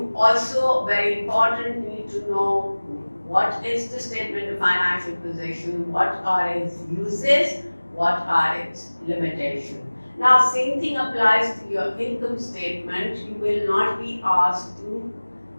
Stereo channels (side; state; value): both; inverted; correlation -1.00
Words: also, very important, need to know what is the statement of financial position, what are its uses, what are its limitations. Now, same thing applies to your income statement. You will not be asked to